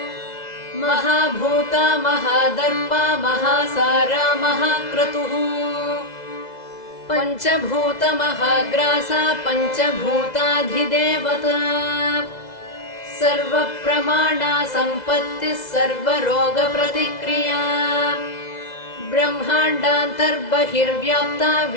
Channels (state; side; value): late; right; 2.0 ms